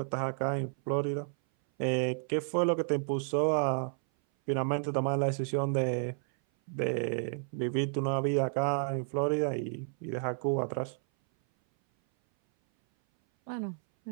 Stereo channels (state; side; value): silent; left; 57 dB below the other